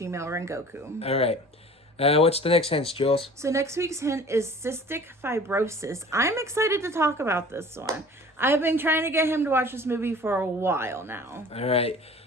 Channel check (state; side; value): normal; both; correlation 0.45